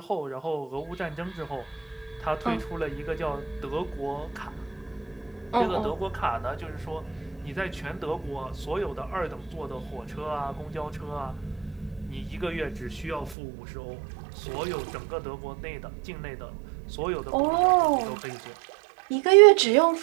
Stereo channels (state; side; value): drops out; left; at 13.4 s